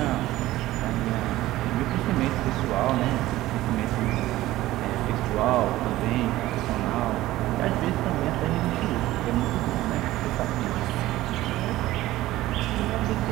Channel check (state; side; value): quieter; left; 16.2 dB